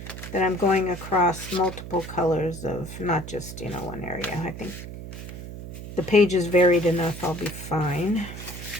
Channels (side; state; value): right; noise; hum, 11 dB below the sound